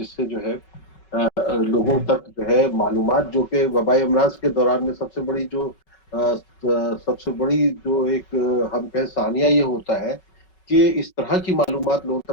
سے جو ہے لوگوں تک جو ہے معلومات، جو کہ وبائی امراض کے دوران میں سب سے بڑی جو ایک ہم کہیں ثانیہ یہ ہوتا ہے کہ اس طرح کی معلومات لوگوں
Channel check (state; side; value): late; right; 5.3 ms